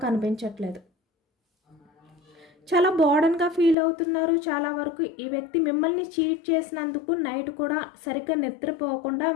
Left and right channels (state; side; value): drops out; right; at 3.8 s